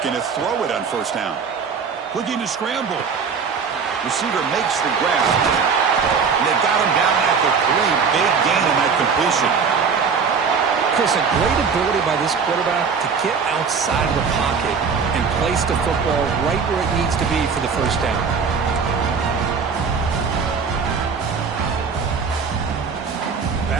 to throw it on first down. Looking to scramble. Receiver makes the grab. And they got him down at the 3. Big gain on that completion. Chris, a great ability by this quarterback to get outside of the pocket and place the football right where it needs to be for the first down.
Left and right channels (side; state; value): left; quieter; 5.7 dB